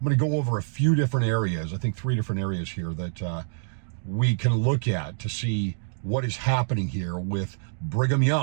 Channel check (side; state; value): left; silent; digital silence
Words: going to go over a few different areas, I think 3 different areas here that we can look at to see what is happening here with Brigham